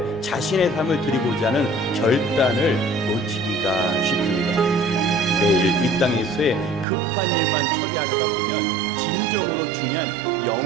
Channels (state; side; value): drops out; left; at 6.9 s